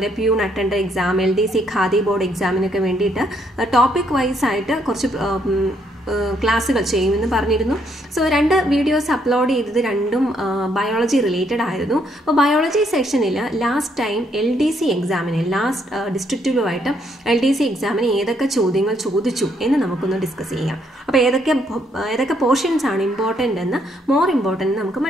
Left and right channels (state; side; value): normal; both; correlation 0.72